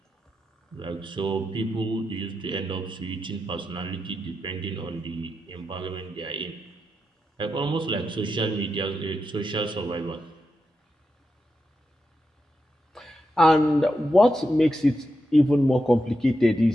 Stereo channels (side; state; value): both; normal; correlation 0.87